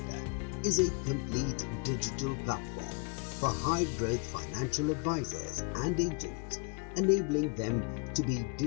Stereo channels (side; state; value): right; quieter; 33.2 dB